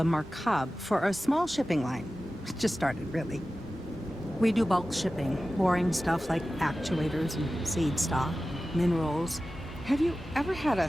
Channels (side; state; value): both; normal; correlation 0.95